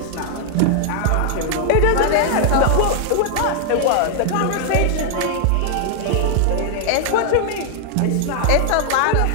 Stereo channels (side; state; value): both; different; correlation 0.00